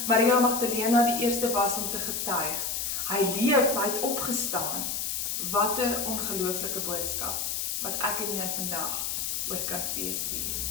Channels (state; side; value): noise; left; hiss, 1 dB below the sound